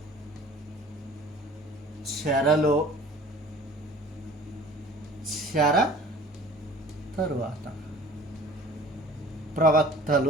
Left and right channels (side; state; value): both; normal; correlation 0.47